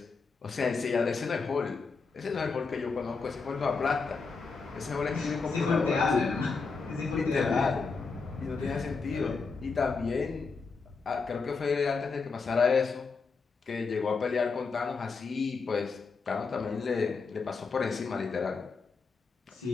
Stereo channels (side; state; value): right; quieter; 4.7 dB